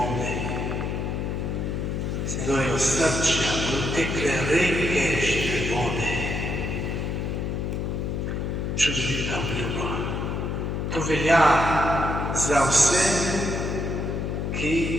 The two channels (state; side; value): noise; left; hum, 1 dB below the sound